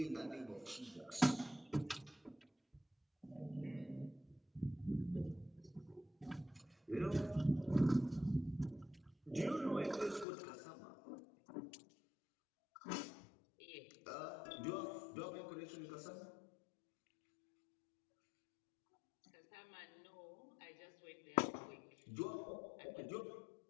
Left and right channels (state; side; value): drops out; right; at 10.2 s